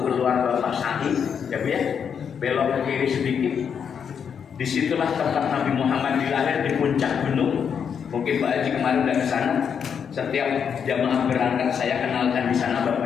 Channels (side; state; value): right; quieter; 7.3 dB